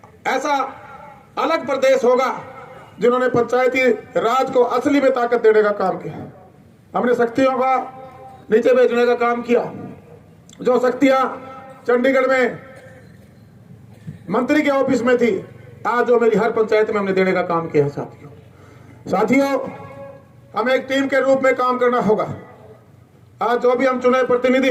ऐसा अलग प्रदेश होगा जिन्होंने पंचायती राज को असली में ताकत देने का काम किया। हमने शक्तियों का नीचे भेजने का काम किया। जो शक्तियां चंडीगढ़ में मंत्री के ऑफिस में थी, आज जो मेरी हर पंचायत में हमने देने का काम किया है साथियों। हमें एक टीम के रूप में काम करना होगा। आज जो भी हम चुने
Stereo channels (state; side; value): identical; both; correlation 1.00